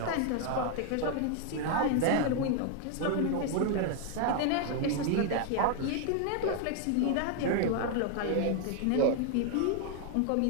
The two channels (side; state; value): both; different; correlation 0.00